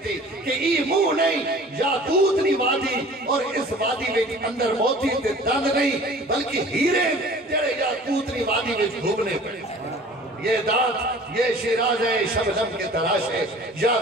کہ ای منہ نہیں یاقوت ری وادی، اور اس وادی میں اندر موتیت دند نہیں بلکہ ہیرے جڑے یاقوت ری وادی میں گھومنے پڑے۔ یہ دانت یہ شیراز ہے شبنم کے تراشے،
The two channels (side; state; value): both; normal; correlation 0.46